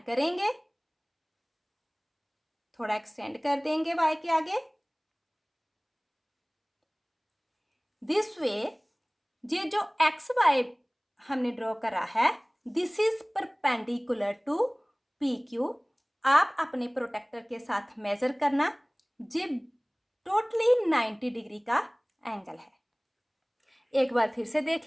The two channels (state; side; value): identical; both; correlation 1.00